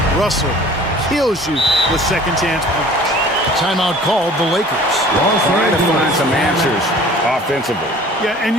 Russell kills you with second chance points. Timeout called the Lakers. Trying to find some answers offensively. Yeah, and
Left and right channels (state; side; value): normal; both; correlation 0.47